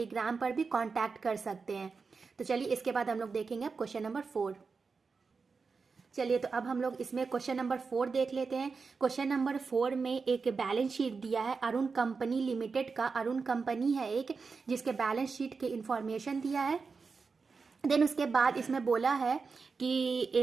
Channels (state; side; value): quieter; left; 4.8 dB